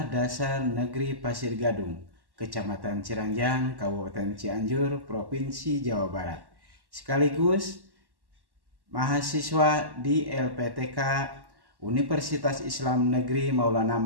Dasar Negeri Pasir Gadung, Kecamatan Ciranjang, Kabupaten Cianjur, Provinsi Jawa Barat. Sekaligus mahasiswa di LPTK Universitas Islam Negeri Maulana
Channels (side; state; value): left; late; 1.1 ms